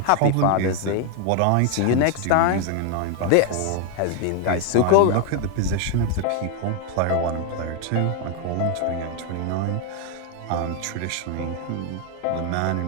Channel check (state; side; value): different; both; correlation 0.00